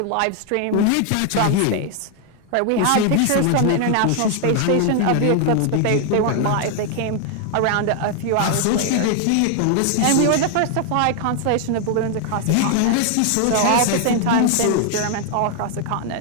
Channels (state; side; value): different; both; correlation 0.00